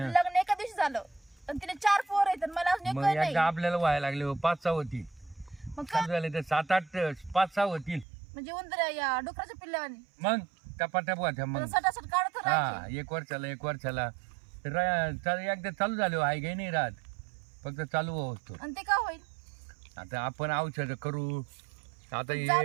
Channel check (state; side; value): drops out; left; at 8.1 s